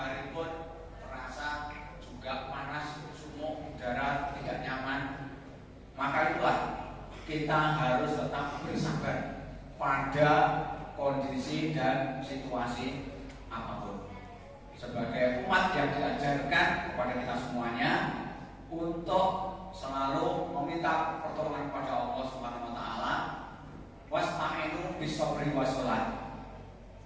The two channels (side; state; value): both; identical; correlation 1.00